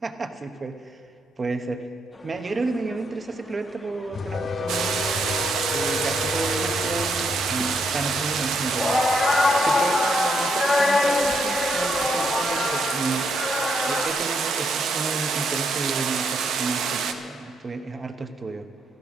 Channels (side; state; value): both; normal; correlation 0.76